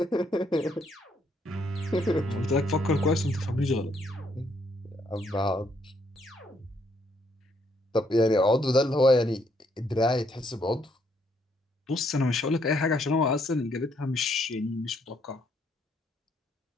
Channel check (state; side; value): normal; both; correlation 0.71